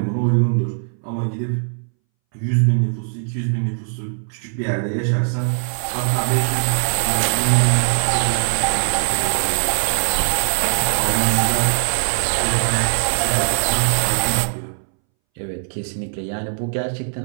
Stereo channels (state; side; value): silent; left; 64 dB below the other